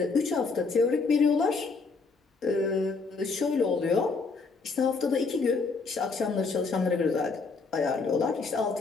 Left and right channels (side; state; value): right; quieter; 4.3 dB